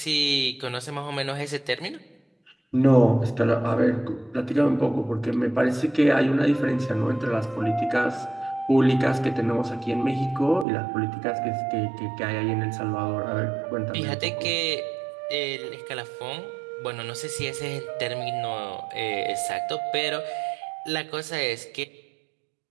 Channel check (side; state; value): left; drops out; at 10.7 s